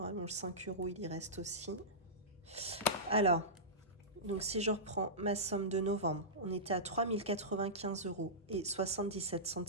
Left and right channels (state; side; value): normal; both; correlation -0.17